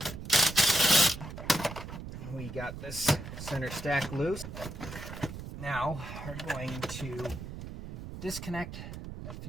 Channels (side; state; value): right; noise; rumble, 9 dB below the sound